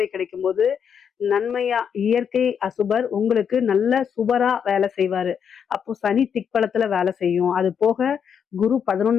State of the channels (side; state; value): right; quieter; 7.5 dB